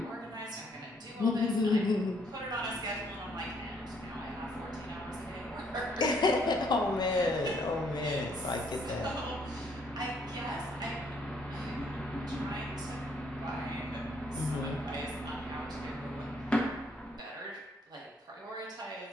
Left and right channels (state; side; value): normal; both; correlation 0.67